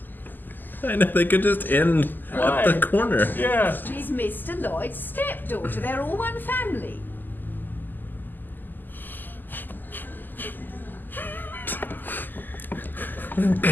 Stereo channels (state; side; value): late; right; 0.088 ms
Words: I know, they could just end at the corner. Yeah. She's Mr. Lloyd's stepdaughter. They're all one family.